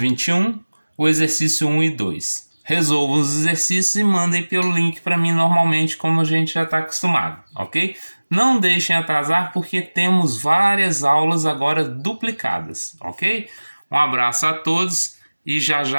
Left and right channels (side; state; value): both; inverted; correlation -1.00